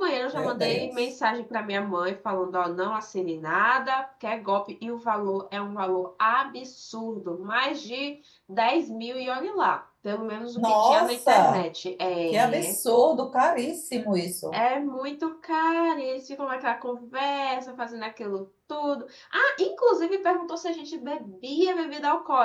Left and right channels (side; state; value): both; identical; correlation 1.00